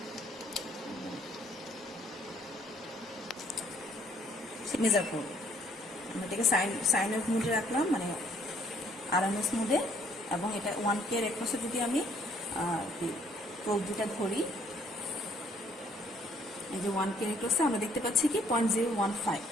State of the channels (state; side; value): normal; both; correlation 0.64